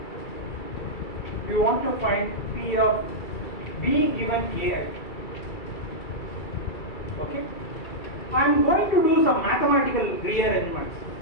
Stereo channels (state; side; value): late; right; 2.3 ms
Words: want to find P of B given AI. Okay. I am going to do some mathematical rearrangements.